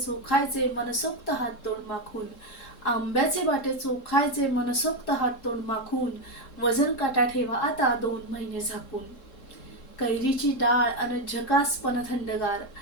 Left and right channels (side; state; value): right; late; 3.7 ms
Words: मनसोक्त हात तोंड माखून. आंब्याचे बाटे चोखायचे मनसोक्त हात तोंड माखून. वजन काटा ठेवा आता 2 महिने झाकून. कैरीची डाळ अन झकासपण थंडगार.